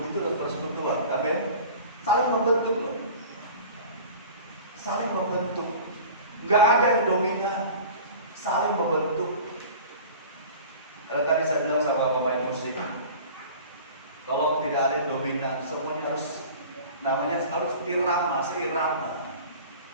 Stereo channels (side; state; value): both; inverted; correlation -0.40